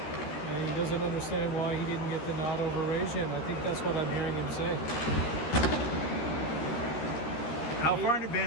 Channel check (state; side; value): late; right; 13 ms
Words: he doesn't understand why he didn't get the nod over Rajan. I think that's what I'm hearing him say. How far in